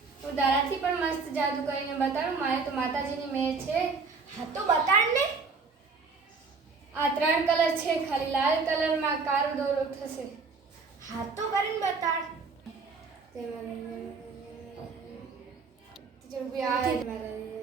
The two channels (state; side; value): quieter; left; 4.6 dB